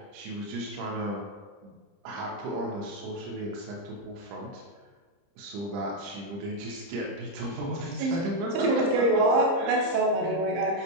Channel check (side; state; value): left; late; 30 ms